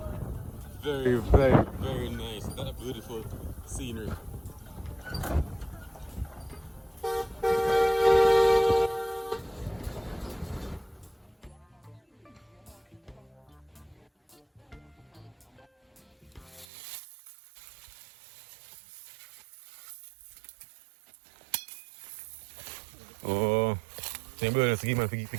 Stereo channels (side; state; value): left; drops out; at 16.7 s